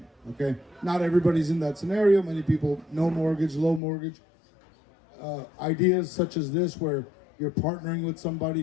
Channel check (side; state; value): right; drops out; at 3.8 s